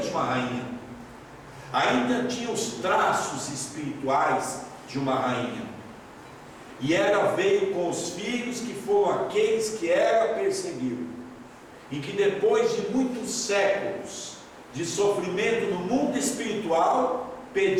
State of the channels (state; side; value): identical; both; correlation 1.00